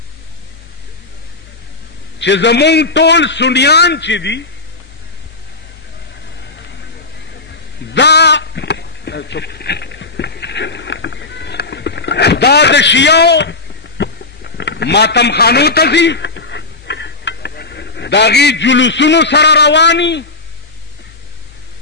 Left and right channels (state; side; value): quieter; right; 3.5 dB